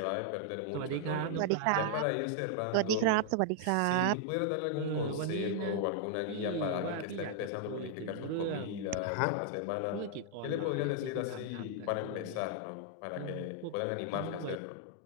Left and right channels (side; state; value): both; different; correlation 0.00